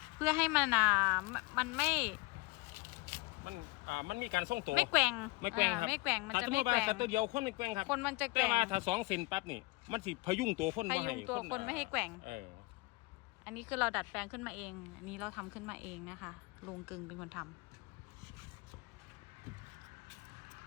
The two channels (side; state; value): right; quieter; 24.1 dB